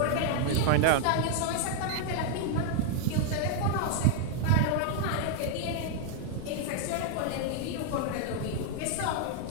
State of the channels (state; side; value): different; both; correlation 0.00